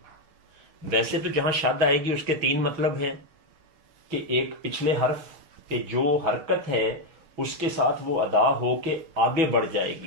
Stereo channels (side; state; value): left; late; 6.2 ms